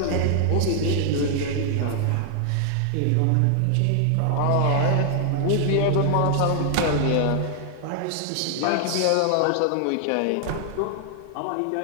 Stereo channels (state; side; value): different; both; correlation 0.00